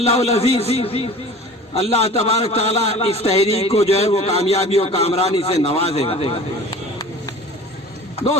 अज़ीज़ अल्लाह तबारक ताला इस तहरीक को जो है वो कामयाबी और कामरानी से नवाजेगा।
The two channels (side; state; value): both; normal; correlation 0.42